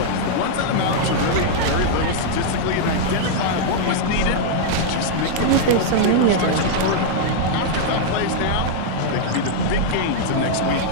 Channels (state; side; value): different; both; correlation -0.01